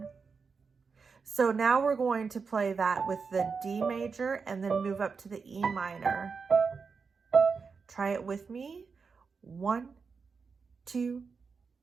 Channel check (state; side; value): quieter; left; 5.2 dB